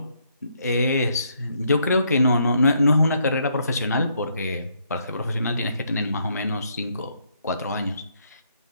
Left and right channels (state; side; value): inverted; both; correlation -0.73